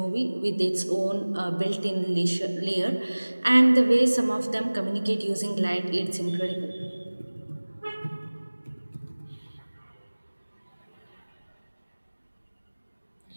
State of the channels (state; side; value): inverted; both; correlation -1.00